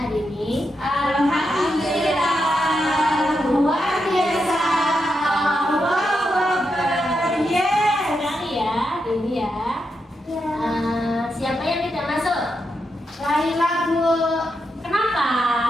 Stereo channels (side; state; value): both; normal; correlation 0.85